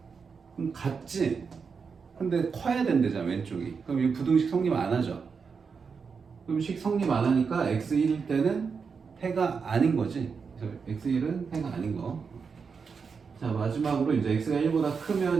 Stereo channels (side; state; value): left; quieter; 5.6 dB